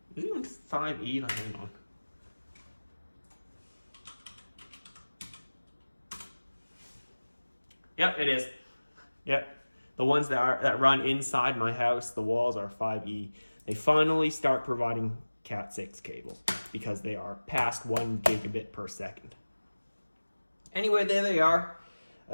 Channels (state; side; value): inverted; both; correlation -1.00